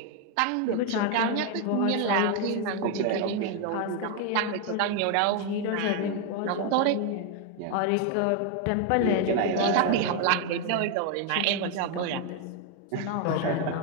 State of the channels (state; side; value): different; both; correlation 0.01